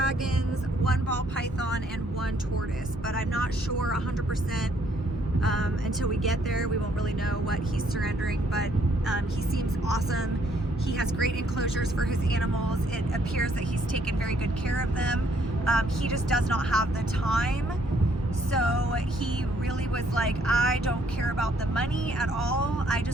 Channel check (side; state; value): both; normal; correlation 0.67